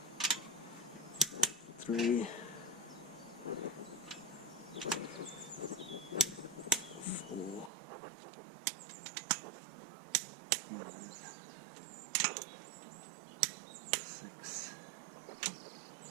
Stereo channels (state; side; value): drops out; left; at 7.7 s